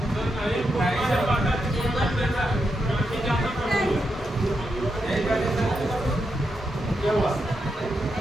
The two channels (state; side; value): normal; both; correlation 0.84